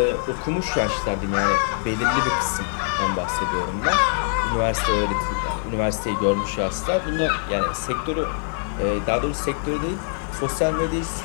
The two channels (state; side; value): silent; right; digital silence